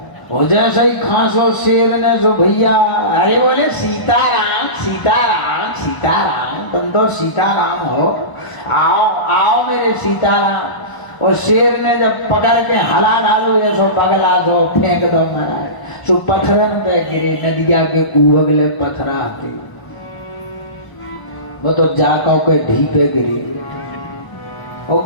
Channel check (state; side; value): late; right; 1.0 ms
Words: और जैसे ही खांसो शेर ने सो भैया अरे बोले सीताराम सीताराम सीताराम, तुम तो सीताराम हो, आओ आओ मेरे सीताराम। और शेर ने जब पकड़ के हला डालो ऐसो पगला दो फेंक दो महाराज, सो पत्थरन पे गिरे, नदिया के उगले पत्थरा के वो तो जाको के ढीपे गिरे। और